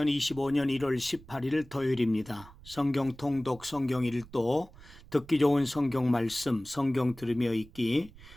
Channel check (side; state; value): right; noise; rumble, 20 dB below the sound